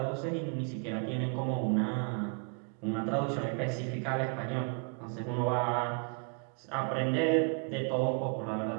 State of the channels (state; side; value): quieter; left; 39.0 dB